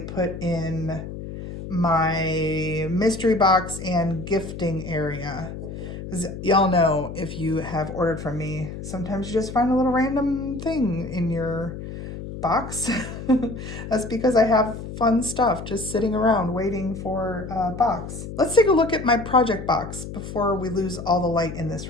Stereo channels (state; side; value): noise; left; hum, 9 dB below the sound